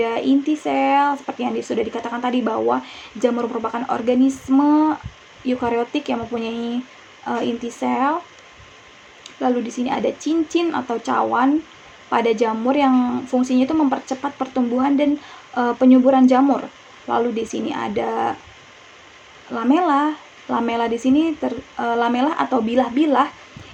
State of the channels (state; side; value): identical; both; correlation 1.00